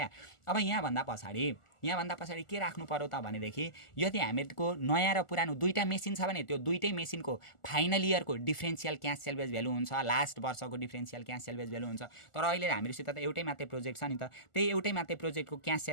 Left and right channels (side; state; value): right; late; 1.4 ms